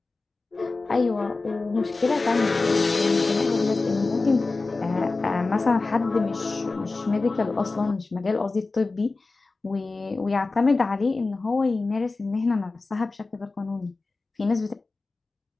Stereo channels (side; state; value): right; quieter; 3.6 dB